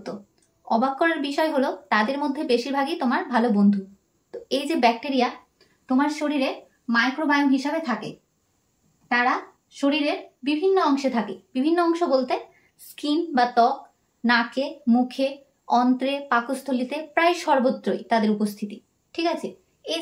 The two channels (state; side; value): identical; both; correlation 1.00